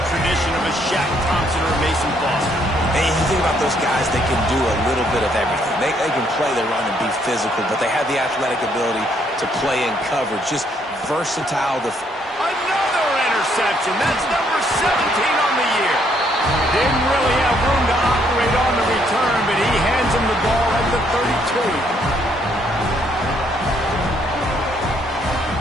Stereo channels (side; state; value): both; normal; correlation 0.70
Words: tradition of a Shaq Thompson or a Mason Foster? And you think about those guys, they can do a little bit of everything. They can play the run and be physical, but they have the athletic ability to play in coverage. Just versatile. Another interception. That's number 17 on the year. Didn't really have room to operate on the return, but he hands him the ball at the 32.